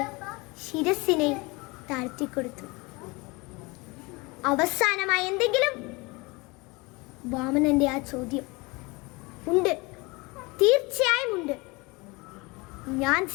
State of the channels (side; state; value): right; quieter; 25.5 dB